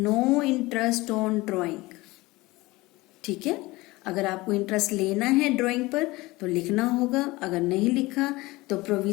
इंटरेस्ट ऑन ड्राइंग। ठीक है, अगर आपको इंटरेस्ट लेना है ड्राइंग पर तो लिखना होगा, अगर नहीं लिखा तो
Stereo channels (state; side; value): quieter; right; 20.9 dB